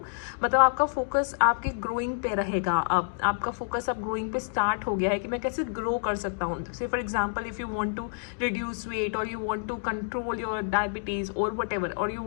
मतलब आपका फोकस आपके ग्रोइंग पे रहेगा। अब आपका फोकस अब ग्रोइंग पे स्टार्ट हो गया है कि मैं कैसे ग्रो कर सकता हूँ। Say for example if you want to reduce weight or you want to control your diabetes or whatever, or you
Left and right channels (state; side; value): silent; right; digital silence